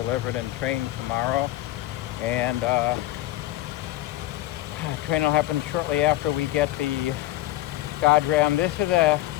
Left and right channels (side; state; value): right; quieter; 15.7 dB